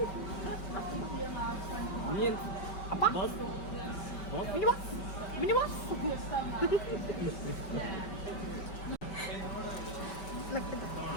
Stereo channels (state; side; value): late; right; 5.2 ms